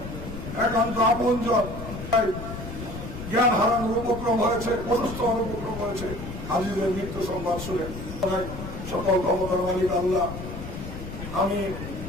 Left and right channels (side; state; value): left; noise; rumble, 9 dB below the sound